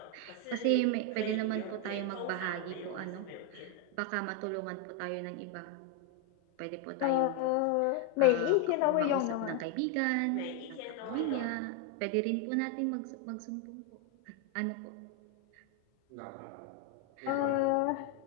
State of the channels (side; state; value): both; different; correlation 0.01